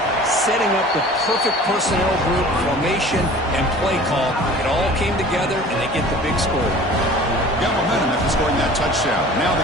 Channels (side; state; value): both; normal; correlation 0.44